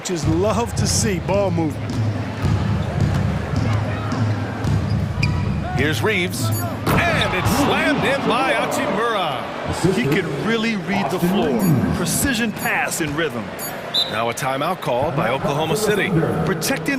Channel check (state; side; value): identical; both; correlation 1.00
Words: love to see, ball movement. Here's Reeves, and it's slammed in by Hachimura. He can really read the floor. Precision pass in rhythm. Now a timeout called by Oklahoma City.